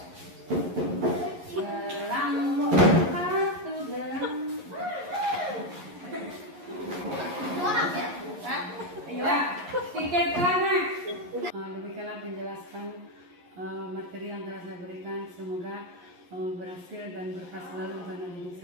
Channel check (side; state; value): left; late; 11 ms